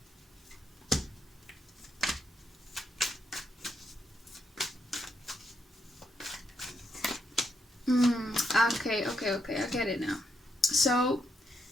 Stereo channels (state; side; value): normal; both; correlation 0.78